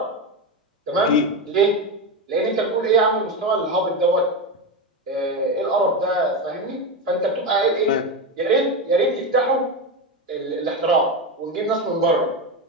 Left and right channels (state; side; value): normal; both; correlation 0.15